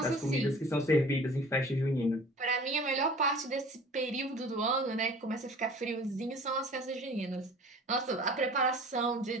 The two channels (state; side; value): normal; both; correlation 0.45